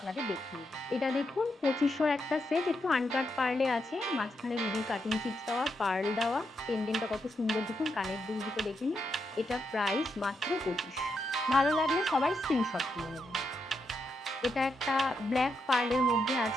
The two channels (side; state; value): both; normal; correlation 0.82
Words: দেখিয়ে দিই। এটা দেখুন 2500 একটা সেট, একটু আনকাট পার্লে আছে, মাঝখানে রুবি কাটিং চিপস দেওয়া, পার্ল দেওয়া, পেন্ডেন্টটা কত সুন্দর দেখুন, কানের দুল দুটো দেখে নিন। এটা প্রাইস মাত্র 25। ভালো লাগলে সবাই স্ক্রিনশট তুলে নেবেন। এটা একটা ব্ল্যাক পার্লের মধ্যে